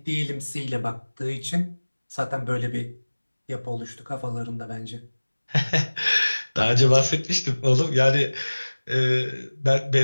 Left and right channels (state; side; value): inverted; both; correlation -1.00